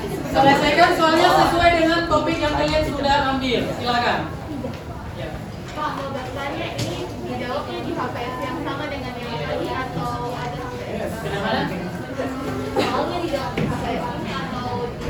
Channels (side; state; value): both; identical; correlation 1.00